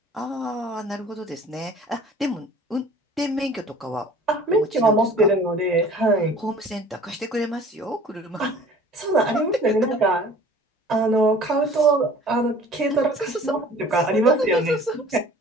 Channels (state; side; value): normal; both; correlation 0.48